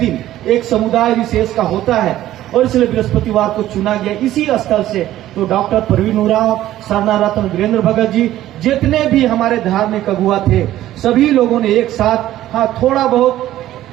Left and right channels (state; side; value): quieter; left; 13.8 dB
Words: एक समुदाय विशेष का होता है और इसलिए बृहस्पतिवार को चुना गया इसी स्थल से। तो डॉक्टर परवीन उरांव, सरना रत्न, वीरेंद्र भगत जी, जितने भी हमारे धार्मिक अगुआ थे, सभी लोगों ने एक साथ, हाँ थोड़ा बहुत